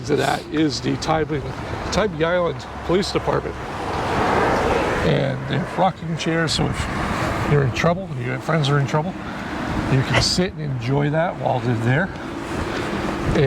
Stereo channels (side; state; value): both; identical; correlation 1.00